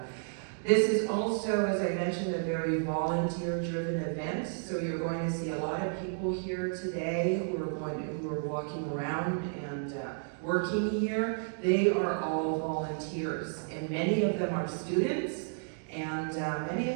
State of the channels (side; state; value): left; silent; digital silence